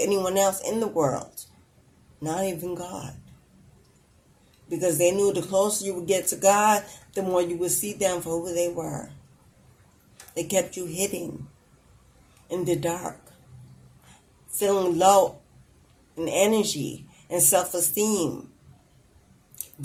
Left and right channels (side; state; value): both; identical; correlation 1.00